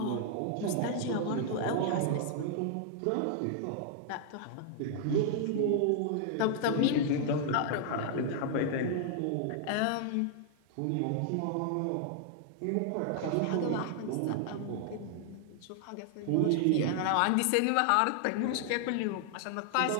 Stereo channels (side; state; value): both; different; correlation 0.00